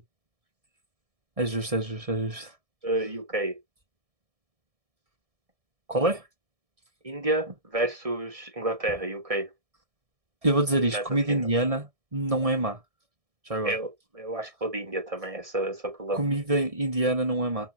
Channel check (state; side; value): late; left; 1.7 ms